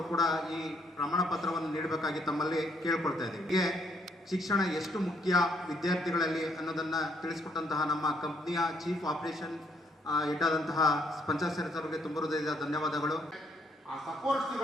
ಕೂಡ ಈ ಪ್ರಮಾಣ ಪತ್ರವನ್ನು ನೀಡಬೇಕಾಗಿ ತಮ್ಮಲ್ಲಿ ಕೇಳ್ಕೊಳ್ತಾ ಇದ್ದೀವಿ. ಹೀಗೆ ಶಿಕ್ಷಣ ಎಷ್ಟು ಮುಖ್ಯ ವಿದ್ಯಾರ್ಥಿಗಳಲ್ಲಿ ಅನ್ನೋದನ್ನು ತಿಳಿಸ್ಕೊಟ್ಟಂತಹ ನಮ್ಮ ಕಂಪ್ನಿಯ ಚೀಫ್ ಆಪರೇಷನ್ ಹೆಡ್ ಆದಂತಹ ಪಂಚಾಯತ್ ಸರ್ ಅವರಿಗೆ ತುಂಬ ಹೃದಯದ ಧನ್ಯವಾದಗಳು. ಆ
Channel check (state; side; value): normal; both; correlation 0.70